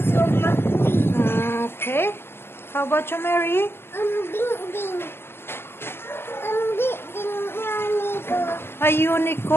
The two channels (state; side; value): late; right; 0.11 ms